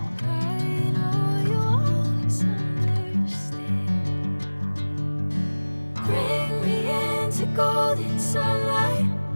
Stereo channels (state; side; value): inverted; both; correlation -1.00